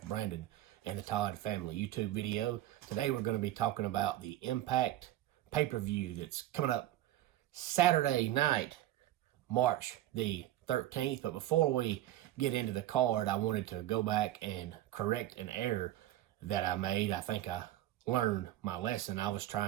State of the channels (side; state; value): left; quieter; 14.3 dB